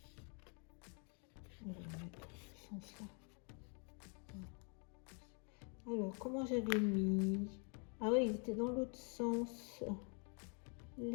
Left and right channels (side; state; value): right; quieter; 37.7 dB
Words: On va mettre ce sens-là. Alors, comment j'avais mis? Ah oui, il était dans l'autre sens.